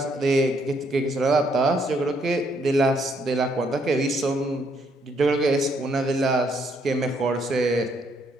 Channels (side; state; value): both; normal; correlation 0.71